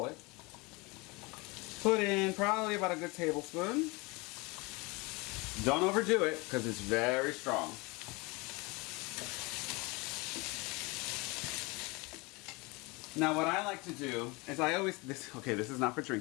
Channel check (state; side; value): quieter; right; 26.0 dB